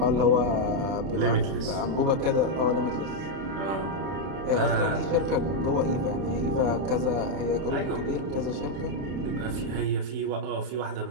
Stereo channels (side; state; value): left; late; 31 ms